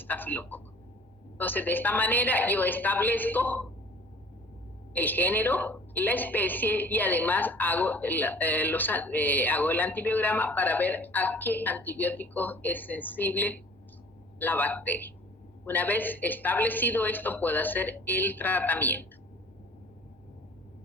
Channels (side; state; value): both; normal; correlation 0.49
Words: Entonces, de esta manera yo establezco el género, la especie, y además hago el antibiograma para ver a qué antibiótico es sensible la bacteria. Una vez establecido esto, puedo hacer el tratamiento.